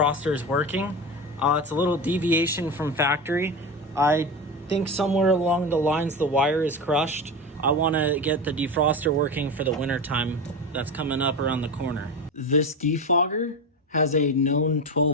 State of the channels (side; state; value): both; normal; correlation 0.23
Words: working. It's a little deviation from factory. I think somewhere along the lines the wire is crushed. I wanna get the defroster working for the winter time that's coming up around the corner. This defogger has a known